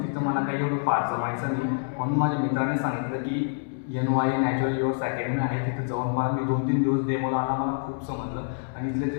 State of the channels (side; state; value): right; silent; digital silence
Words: तिथं मला काही एवढं फार जमायचं नाही, म्हणून माझ्या मित्राने सांगितलं की NY नॅचरल युवर्स अकॅडमी आहे, तिथं जाऊन मला मी 2-3 दिवस डेमो आला, मला खूप समजलं. आणि इथले